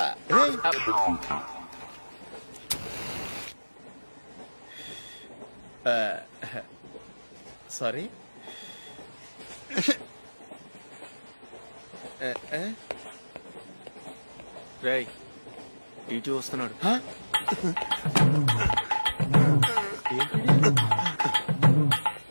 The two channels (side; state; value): both; inverted; correlation -1.00